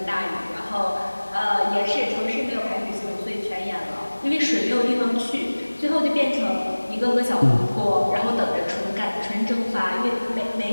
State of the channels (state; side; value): inverted; both; correlation -1.00